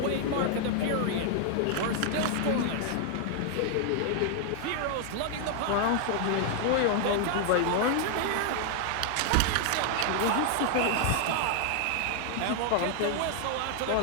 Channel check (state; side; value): different; both; correlation 0.00